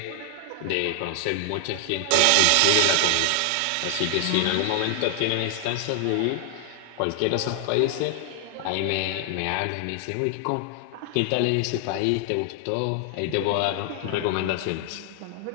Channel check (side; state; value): both; different; correlation 0.00